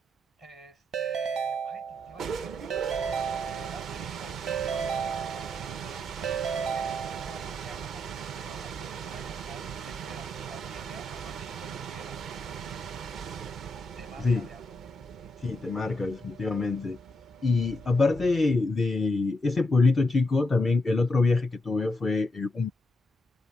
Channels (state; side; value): normal; both; correlation 0.81